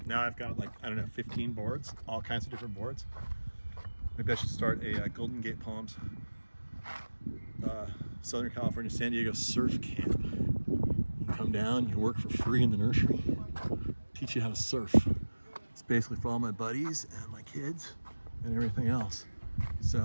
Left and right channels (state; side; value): inverted; both; correlation -1.00